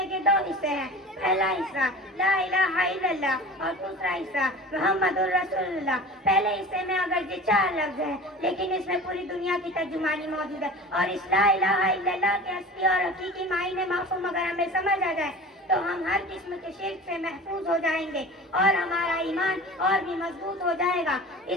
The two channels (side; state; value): both; normal; correlation 0.37